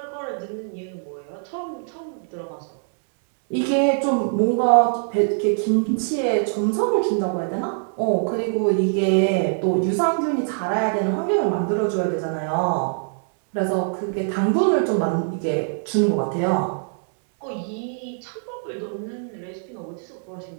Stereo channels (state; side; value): silent; left; 63 dB below the other